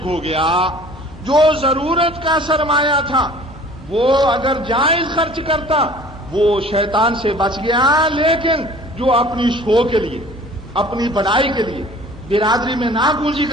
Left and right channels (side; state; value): both; normal; correlation 0.48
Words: ہو گیا۔ جو ضرورت کا سرمایہ تھا وہ اگر جائز خرچ کرتا وہ شیطان سے بچ گیا، لیکن جو اپنی شو کے لیے، اپنی بڑائی کے لیے، برادری میں ناگونجی